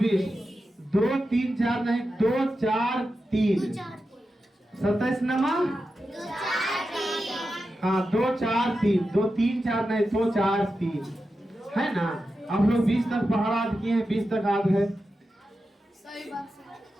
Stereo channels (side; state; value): both; normal; correlation 0.90